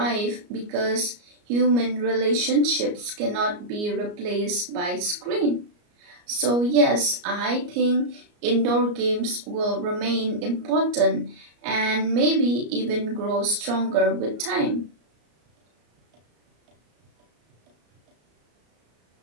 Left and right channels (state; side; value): late; left; 34 ms